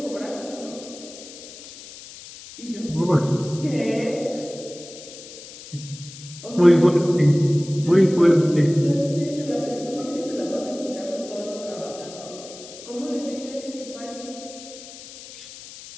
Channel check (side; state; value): left; noise; hiss, 16 dB below the sound